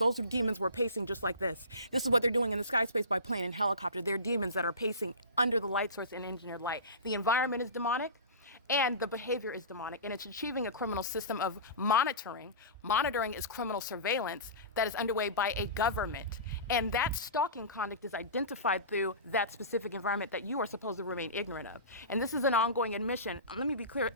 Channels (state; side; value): inverted; both; correlation -0.31